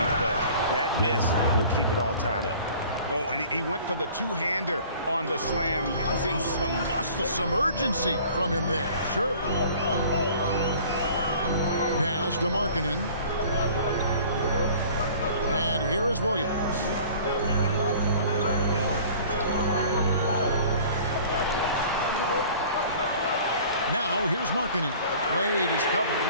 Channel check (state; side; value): inverted; both; correlation -0.47